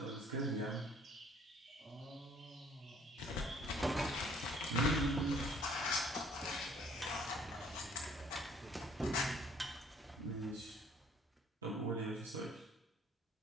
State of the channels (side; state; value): both; normal; correlation 0.58